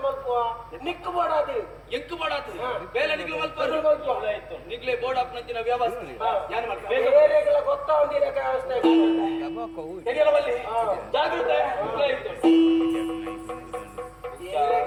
ನಿಕ್ಕು ಬೋಡಾದು ಎಂಕು ಬೋಡಾದು ಬೇಲೆ ನಿಕ್ಲು ಮಲ್ಪು ನಿಕ್ಲೆ ಬೋರ್ಡ್ ಅಪ್ನಂಚಿನ ವ್ಯವಸ್ಥೆ ಯಾನ್ ಮಾಡ್ಕ ಬೇರೆಗಳ ಗೊತ್ತಾವಂದಿರ ವ್ಯವಸ್ಥೆ ತೆರಿಯಲ್ಲ ಬಲ್ಲಿ ಜಾಗೃತೆ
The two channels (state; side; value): identical; both; correlation 1.00